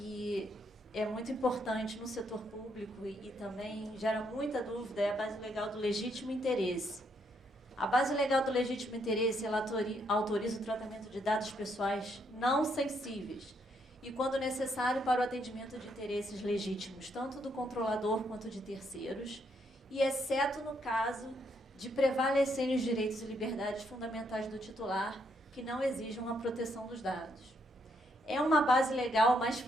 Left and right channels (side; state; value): both; normal; correlation 0.74